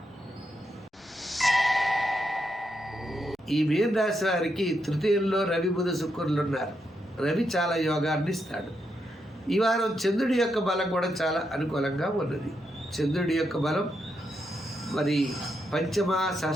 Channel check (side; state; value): both; normal; correlation 0.82